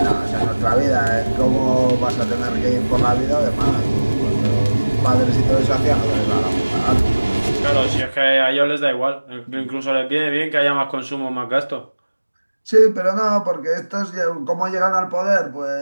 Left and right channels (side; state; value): both; inverted; correlation -1.00